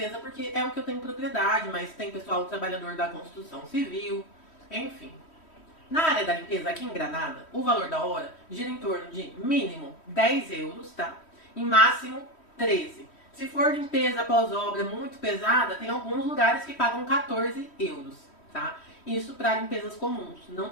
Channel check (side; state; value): right; late; 3.1 ms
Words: porque é o que eu tenho propriedade, mas tem pessoal trabalhador da construção civil, enfim. Na área da limpeza, aqui em Granada, o valor da hora gira em torno de mínimo 10 euros, tá? E máximo 13. Se for limpeza após obra muito pesada, tem alguns lugares que pagam 14 euros, tá? Isso para limpezas comuns. Não